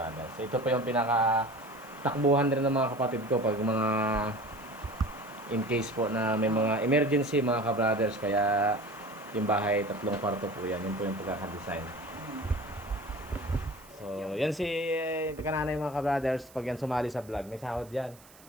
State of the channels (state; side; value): noise; right; hiss, 24 dB below the sound